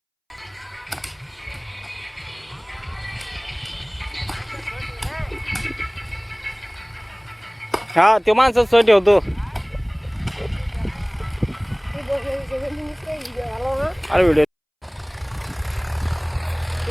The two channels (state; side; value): identical; both; correlation 1.00